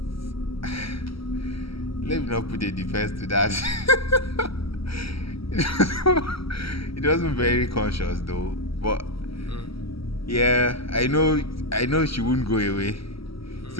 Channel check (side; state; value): right; late; 0.75 ms